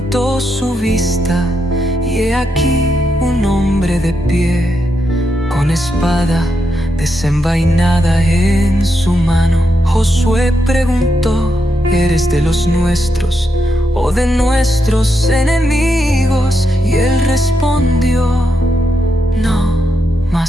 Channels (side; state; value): both; normal; correlation 0.83